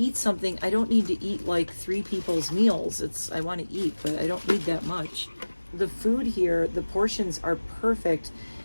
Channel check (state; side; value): inverted; both; correlation -1.00